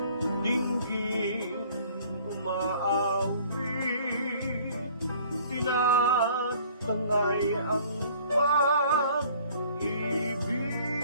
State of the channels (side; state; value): both; inverted; correlation -0.54